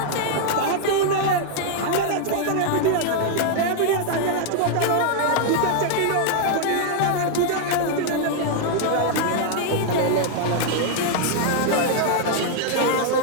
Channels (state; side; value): different; both; correlation 0.00